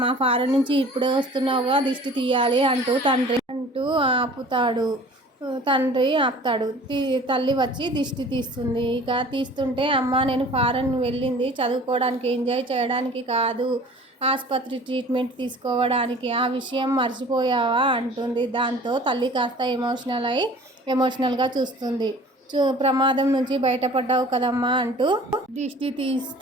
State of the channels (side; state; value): both; normal; correlation 0.46